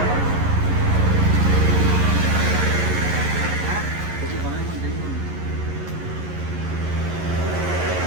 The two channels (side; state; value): left; late; 11 ms